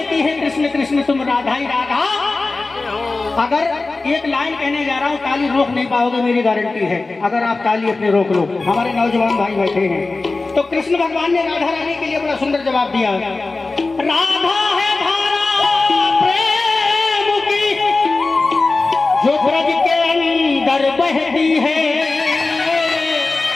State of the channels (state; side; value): quieter; right; 3.5 dB